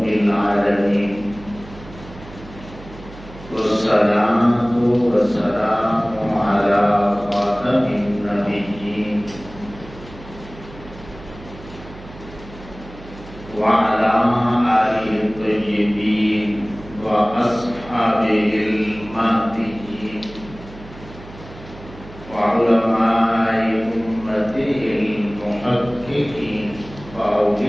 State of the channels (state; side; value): noise; right; hum, 17 dB below the sound